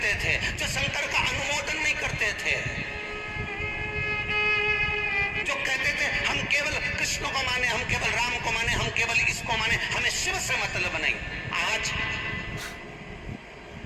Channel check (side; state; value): both; identical; correlation 1.00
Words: थे, जो शंकर का अनुमोदन नहीं करते थे, जो कहते थे हम केवल कृष्ण को माने, हम केवल राम को माने, हम केवल इसको माने, हमें शिव से मतलब नहीं, आज